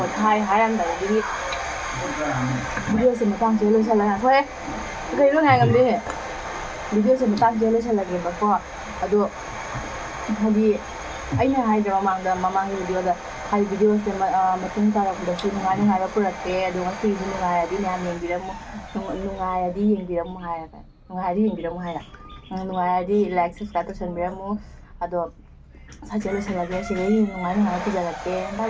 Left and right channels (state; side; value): identical; both; correlation 1.00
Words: hai anh đấy đi video sẽ mà tăng chế sẽ là thôi cái lúc này làm gì video sẽ mà tăng chế sẽ là gì mà có aduh hadi aina haidra mamang video da hai video se matung tara da su ngai ngai ra purate adu ngasi ngai adi nyam yeng biramu ngai adi yeng biramu hai ka ngai adi yeng biramu hai ngai adi like subscribe to biramu ado sa chelo se lagi se ngai ngai ku jalake bye